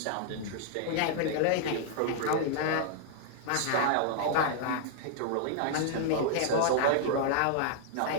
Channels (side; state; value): both; different; correlation -0.01